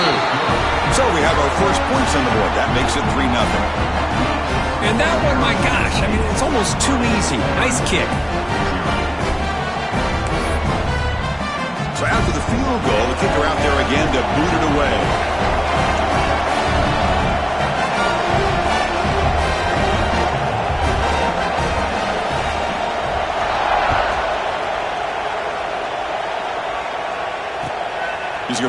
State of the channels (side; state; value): both; identical; correlation 1.00